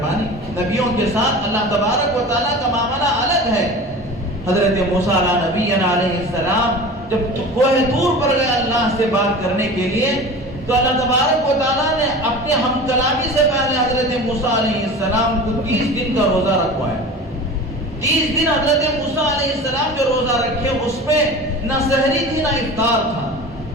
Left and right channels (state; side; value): normal; both; correlation 0.36